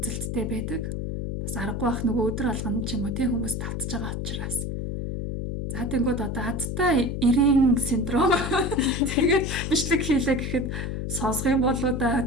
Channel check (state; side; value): noise; left; hum, 3 dB below the sound